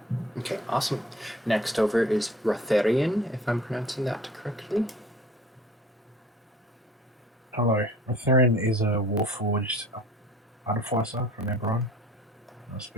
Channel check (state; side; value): normal; both; correlation 0.48